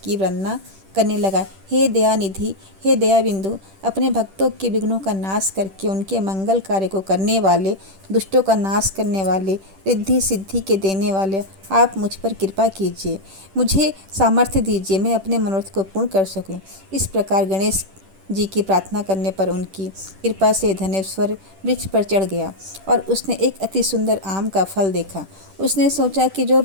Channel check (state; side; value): late; left; 10 ms